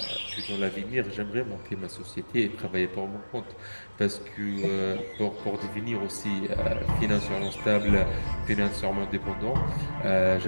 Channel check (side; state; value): both; inverted; correlation -1.00